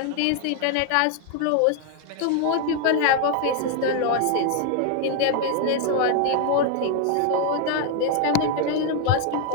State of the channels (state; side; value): different; both; correlation 0.00